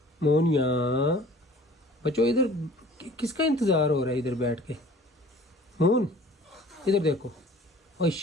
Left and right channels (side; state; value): both; normal; correlation 0.49